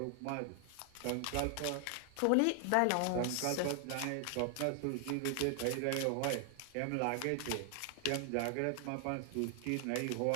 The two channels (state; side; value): different; both; correlation 0.00